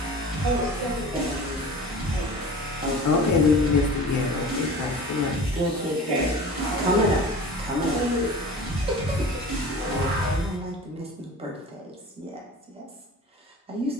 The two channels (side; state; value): both; normal; correlation 0.38